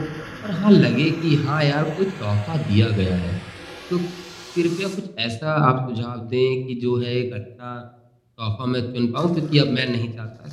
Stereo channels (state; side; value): identical; both; correlation 1.00